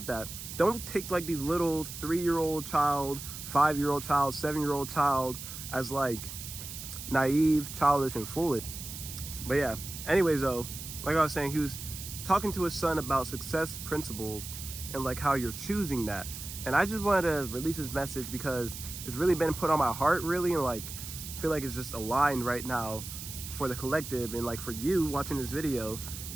that. Don't take like these little 3-year-old child, 5-year-old child, 7-year-old child as like naive, childish, and foolish. But yeah, anyways though, like I was saying, he was talking to his son about success principles and like how you're choosing that. And I just wanted to release this message because it's really been put on my heart, really, and like I feel like it's just aligned right now for the collective, and like for you watching this video,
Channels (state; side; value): noise; right; hiss, 10 dB below the sound